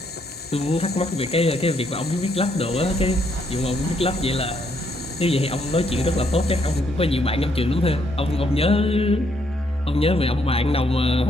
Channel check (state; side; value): normal; both; correlation 0.73